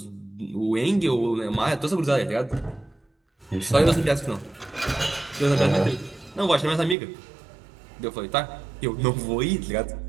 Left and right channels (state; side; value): drops out; left; at 7.0 s